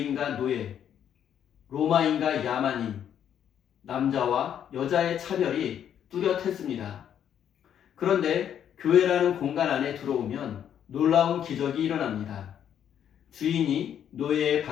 노예, 로마인과 야만인, 남자와 여자의 차별이 뚜렷했습니다. 그런데 교회라는 공간 안에 들어오면 놀라운 기적이 일어납니다. 주인이 노예의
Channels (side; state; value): right; quieter; 9.4 dB